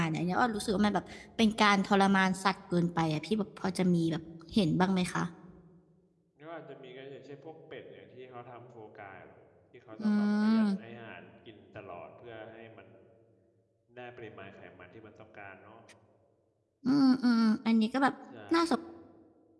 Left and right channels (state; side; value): identical; both; correlation 1.00